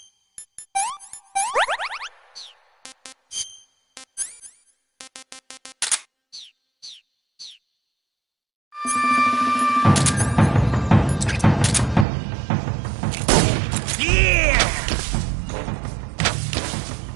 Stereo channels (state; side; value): drops out; left; at 12.1 s